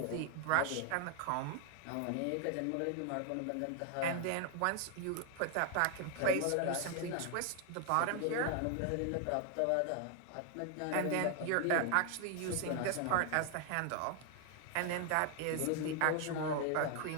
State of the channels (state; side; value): different; both; correlation 0.00